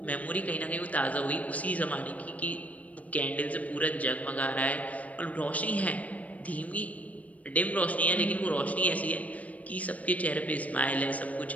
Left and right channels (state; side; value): late; right; 0.070 ms